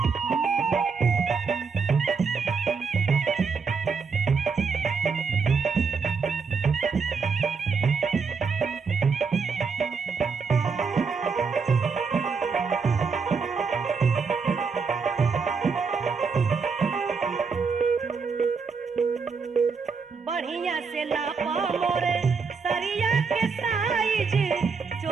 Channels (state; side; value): quieter; left; 5.2 dB